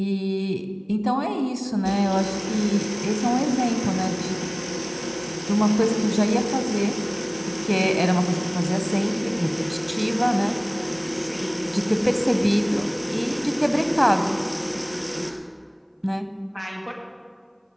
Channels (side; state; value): both; identical; correlation 1.00